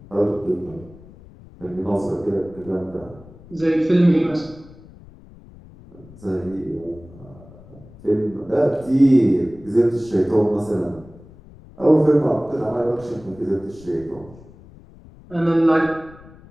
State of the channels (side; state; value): left; noise; rumble, 21 dB below the sound